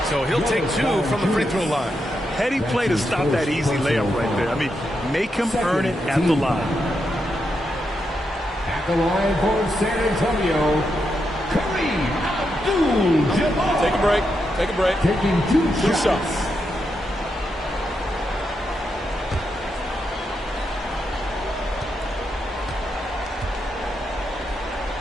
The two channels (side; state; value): both; normal; correlation 0.84